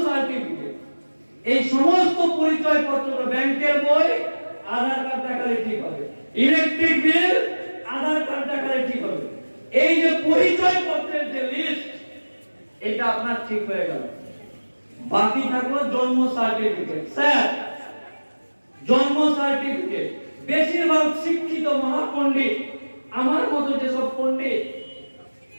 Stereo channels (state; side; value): inverted; both; correlation -1.00